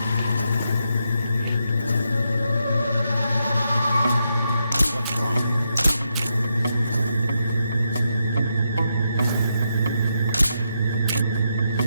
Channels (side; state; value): both; inverted; correlation -0.82